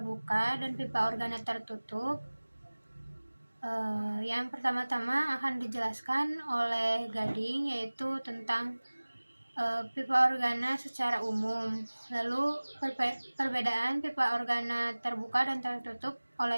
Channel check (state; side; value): inverted; both; correlation -1.00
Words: dan pipa organa tertutup. Yang pertama-tama akan dijelaskan oleh Gading, yaitu tentang pipa organa secara umum. Lalu perbedaan pipa organa terbuka dan tertutup